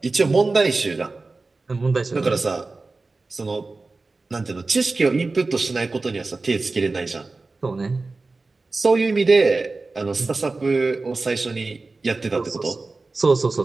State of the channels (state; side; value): quieter; left; 3.6 dB